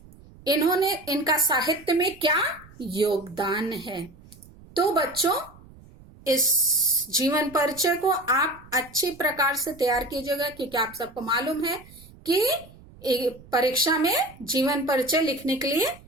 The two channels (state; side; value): noise; right; rumble, 22 dB below the sound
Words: इन्होंने इनका साहित्य में क्या योगदान है। तो बच्चों इस जीवन परिचय को आप अच्छी प्रकार से तैयार कीजिएगा, क्योंकि आप सबको मालूम है कि परीक्षा में जीवन परिचय लिखने के लिए